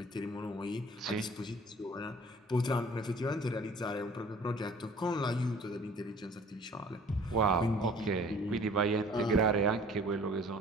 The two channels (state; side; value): normal; both; correlation 0.50